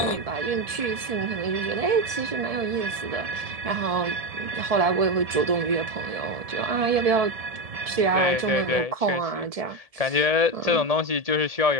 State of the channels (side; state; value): left; late; 1.7 ms